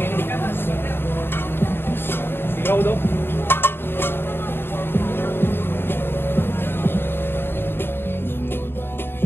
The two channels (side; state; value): right; late; 0.11 ms